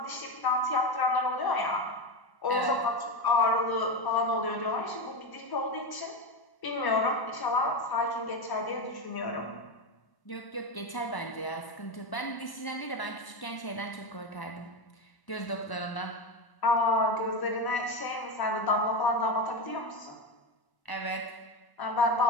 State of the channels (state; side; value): late; right; 1.0 ms